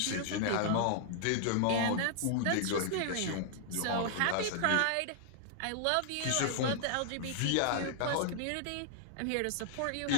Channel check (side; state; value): both; different; correlation -0.01